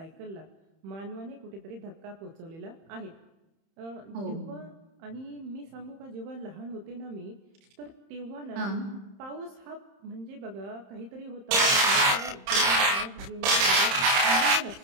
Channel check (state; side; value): late; left; 31 ms